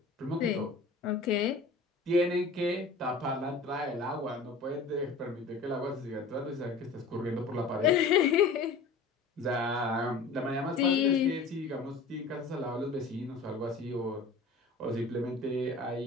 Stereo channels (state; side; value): quieter; right; 4.0 dB